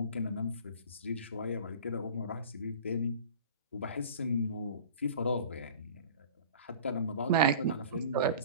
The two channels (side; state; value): both; inverted; correlation -0.41